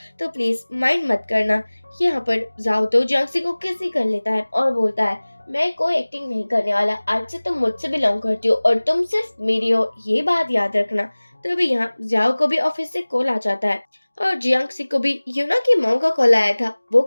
तो प्लीज माइंड मत करना। यहाँ पर जाओ तो जियांग को किस ही कर लेता है और बोलता है मैं कोई एक्टिंग नहीं करने वाला, आज से तुम मुझसे बिलोंग करती हो और तुम सिर्फ मेरी हो, ये बात याद रखना। तभी यहाँ जियाओ को भी ऑफिस से कॉल आ जाता है और जियांग को भी यूना की मॉम का कॉल आया था। वो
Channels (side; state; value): both; inverted; correlation -1.00